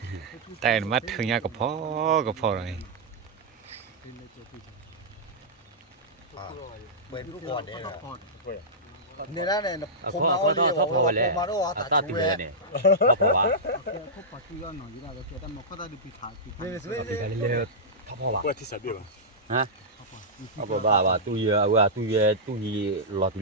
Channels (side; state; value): both; normal; correlation -0.12